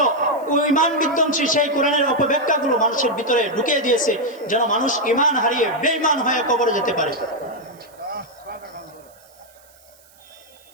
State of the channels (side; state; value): right; noise; hiss, 28 dB below the sound